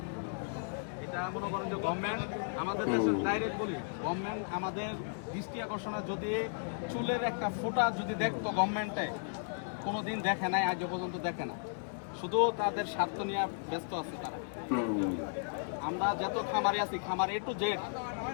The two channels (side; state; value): right; silent; digital silence